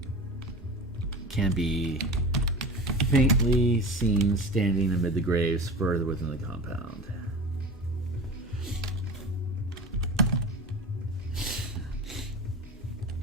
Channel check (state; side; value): normal; both; correlation 0.32